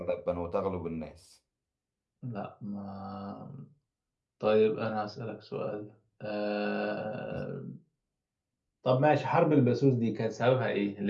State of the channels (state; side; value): identical; both; correlation 1.00